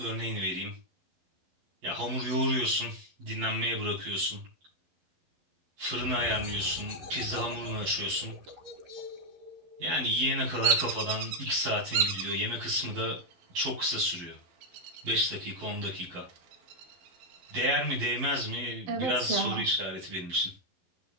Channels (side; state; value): left; late; 11 ms